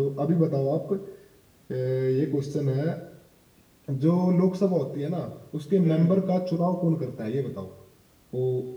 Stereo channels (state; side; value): identical; both; correlation 1.00